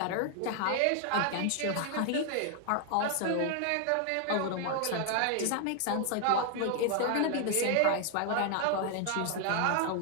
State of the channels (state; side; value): different; both; correlation 0.00